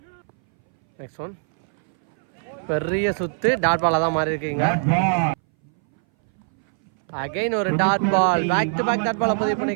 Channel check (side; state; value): left; silent; 61 dB below the other